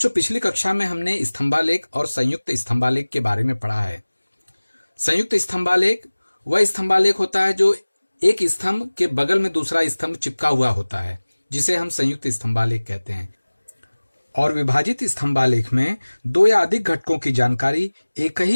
पिछली कक्षा में हमने स्तंभालेख और संयुक्त स्तंभालेख के बारे में पढ़ा है। संयुक्त स्तंभालेख वह स्तंभालेख होता है जो एक स्तंभ के बगल में दूसरा स्तंभ चिपका हुआ होता है, जिसे हम संयुक्त स्तंभालेख कहते हैं। और विभाजित स्तंभालेख में दो या अधिक घटकों की जानकारी एक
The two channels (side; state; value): both; inverted; correlation -1.00